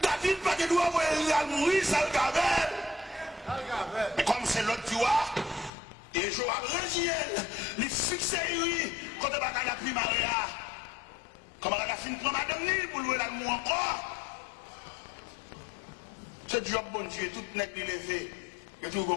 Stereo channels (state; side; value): drops out; right; at 5.7 s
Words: David, pas de doigt, il a mourir, ça le gavelle. Mais comme c'est l'autre tu vois, et Joab Régiel, il fixe lui, quand il va à la primaria. Comment elle a fini pour madame ni pour louer l'amour encore. Ce job, bon Dieu, tout n'est pas levé. Et tout le